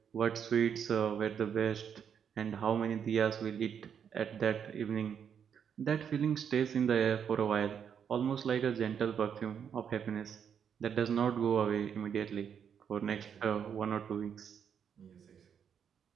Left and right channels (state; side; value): quieter; left; 7.8 dB